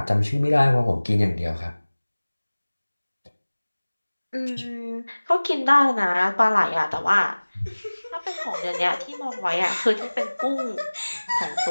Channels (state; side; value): inverted; both; correlation -1.00